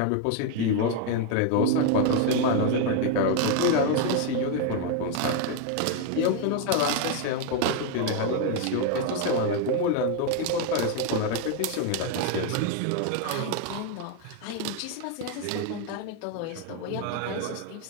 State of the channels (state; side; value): different; both; correlation 0.01